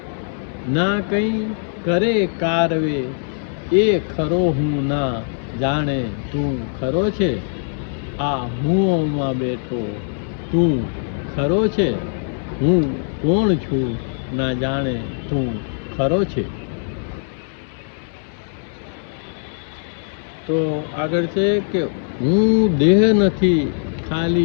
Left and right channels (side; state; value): right; silent; digital silence